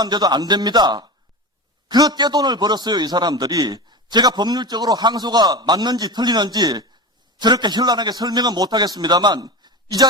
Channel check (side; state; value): both; normal; correlation 0.25